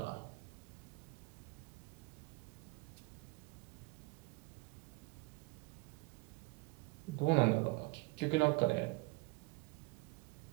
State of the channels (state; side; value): quieter; left; 24.7 dB